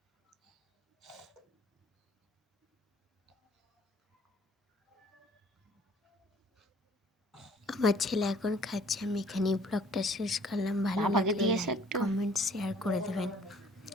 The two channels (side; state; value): both; normal; correlation 0.57